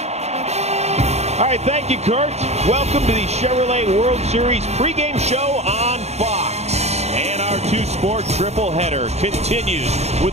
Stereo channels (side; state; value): left; late; 0.31 ms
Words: All right, thank you, Kurt. Welcome to the Chevrolet World Series pregame show on Fox. And our two-sport triple-header continues with